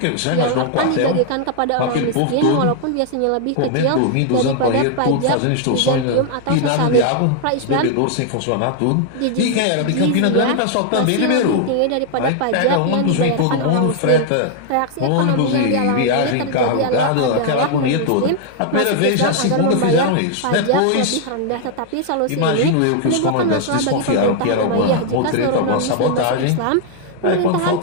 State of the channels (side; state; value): both; different; correlation 0.00